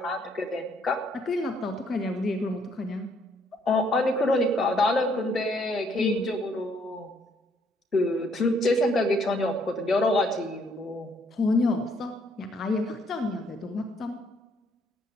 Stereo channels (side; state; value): both; normal; correlation 0.68